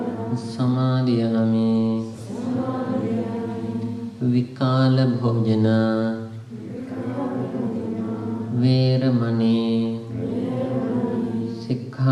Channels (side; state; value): both; identical; correlation 1.00